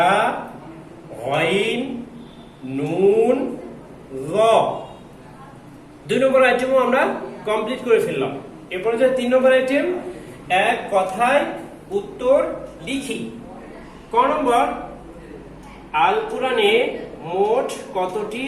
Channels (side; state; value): both; identical; correlation 1.00